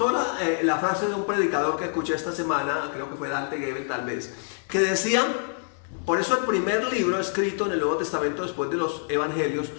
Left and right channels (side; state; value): right; silent; digital silence